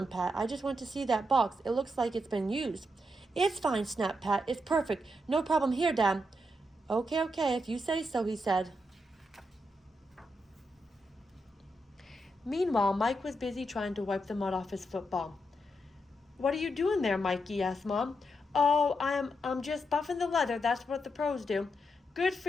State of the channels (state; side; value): normal; both; correlation 0.83